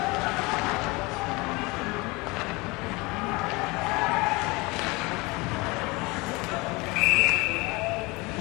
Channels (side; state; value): right; quieter; 24.9 dB